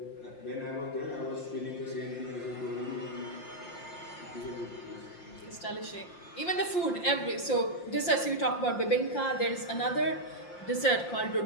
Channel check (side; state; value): right; late; 5.7 ms